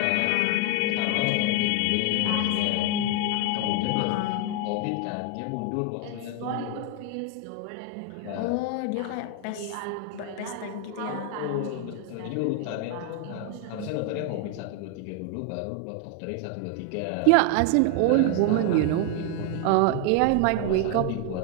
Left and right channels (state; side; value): different; both; correlation 0.01